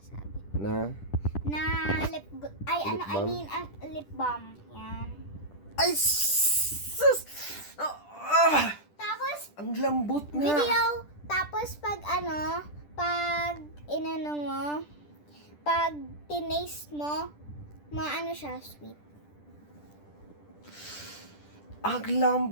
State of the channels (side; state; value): right; late; 10 ms